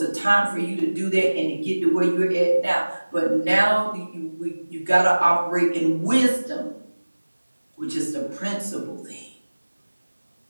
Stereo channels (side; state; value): both; inverted; correlation -1.00